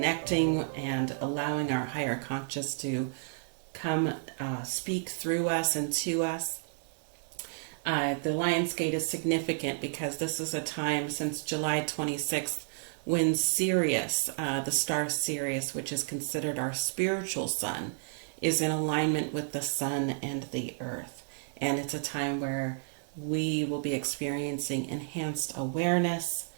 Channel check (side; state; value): left; silent; digital silence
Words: and allowing our higher conscious to come speak through us and to us. The Lionsgate is significant because this is a time since July 26th when Sirius, the star Sirius, which is considered our spiritual sun, is in alignment with the sun and the earth. And it's a time where we will be experiencing enhanced awareness.